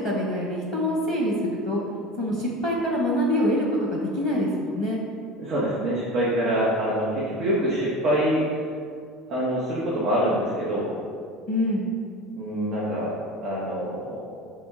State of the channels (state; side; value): normal; both; correlation 0.31